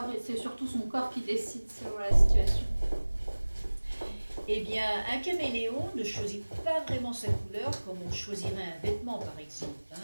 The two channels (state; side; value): inverted; both; correlation -1.00